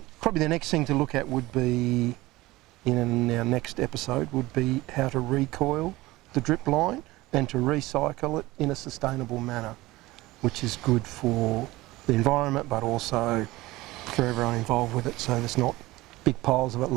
probably the next thing to look at would be, in our next episode, would be how to recoil the drip line and to recycle it in a sustainable manner, which is good for the environment but also for everyone involved with it, so there's not big piles of it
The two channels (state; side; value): quieter; left; 19.2 dB